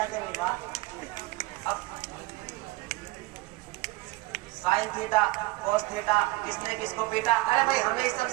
नहीं। अब साइन थीटा, कोस थीटा, किसने किसको पीटा? अरे भाई हमें इस सब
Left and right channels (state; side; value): quieter; left; 20.9 dB